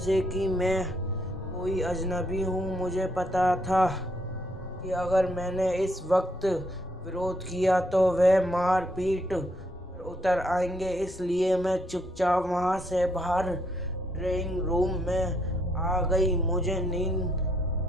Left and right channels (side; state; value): both; normal; correlation 0.73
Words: कि मैं कोई अजनबी हूँ। मुझे पता था कि अगर मैंने इस वक्त विरोध किया तो वे मार पीट पर उतर आएंगे, इसलिए मैं चुपचाप वहाँ से बाहर ड्राइंग रूम में आ गई। मुझे नींद